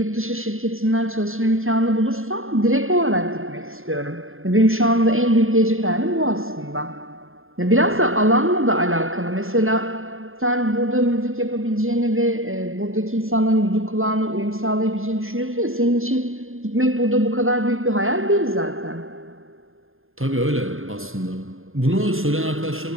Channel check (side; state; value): left; late; 0.60 ms